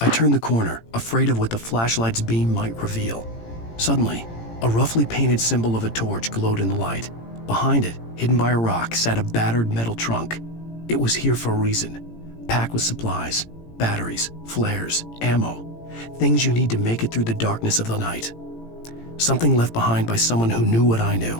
turned the corner, afraid of what the flashlight's beam might reveal. Suddenly, a roughly painted symbol of a torch glowed in the light. Behind it, hidden by a rock, sat a battered metal trunk. It was here for a reason, packed with supplies, batteries, flares, ammo, things you need to make it through the darkness of the night. Something left behind by someone who knew what I knew,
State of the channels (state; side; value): late; right; 18 ms